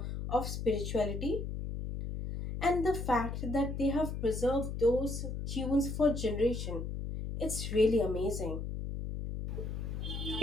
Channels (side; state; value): left; noise; hum, 4 dB below the sound